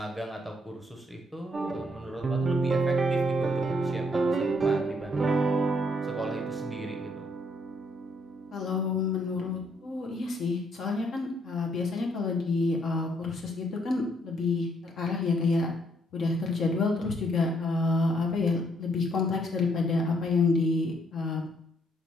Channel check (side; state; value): both; normal; correlation 0.70